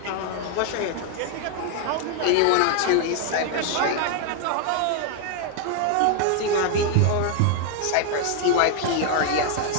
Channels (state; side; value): different; both; correlation 0.00